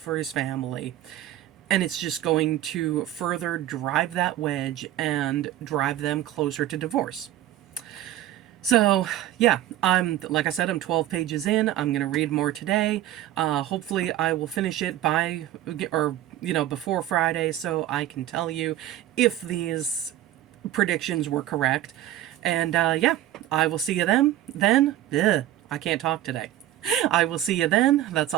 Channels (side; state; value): left; quieter; 13.3 dB